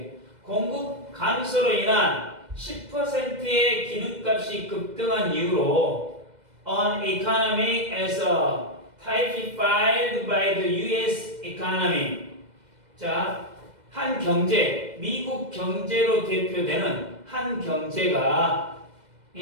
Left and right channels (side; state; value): left; late; 2.0 ms